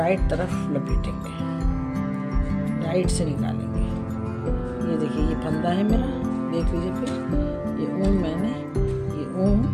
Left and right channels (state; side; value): identical; both; correlation 1.00